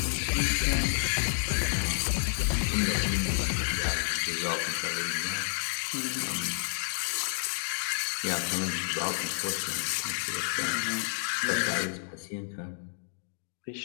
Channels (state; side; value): silent; right; digital silence